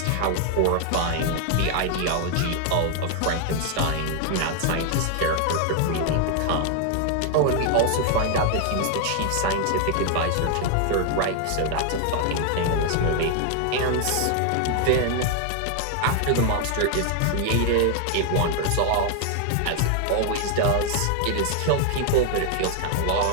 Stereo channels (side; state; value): both; different; correlation 0.00